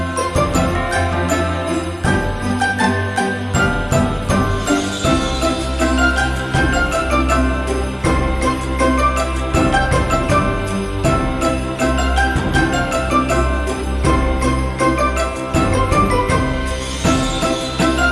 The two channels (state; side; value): identical; both; correlation 1.00